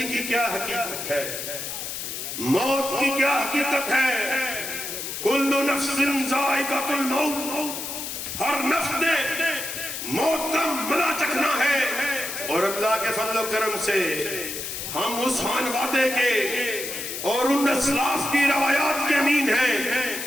کی کیا حقیقت ہے، موت کی کیا حقیقت ہے. کل نفس ذائقۃ الموت، ہر نفس نے موت کا مزہ چکھنا ہے. اور اللہ کے فضل و کرم سے ہم اس خان وعدے کے اور ان اسلاف کی روایات کے امین ہیں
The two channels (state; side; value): noise; left; hiss, 6 dB below the sound